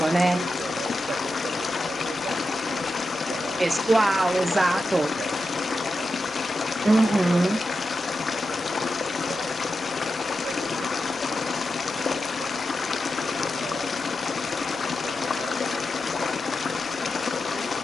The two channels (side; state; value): both; normal; correlation 0.90